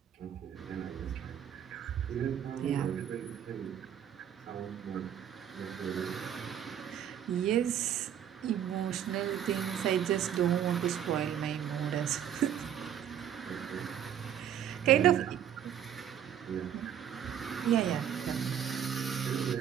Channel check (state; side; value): quieter; left; 9.6 dB